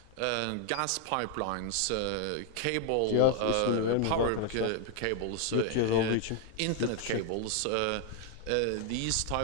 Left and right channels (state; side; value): different; both; correlation 0.00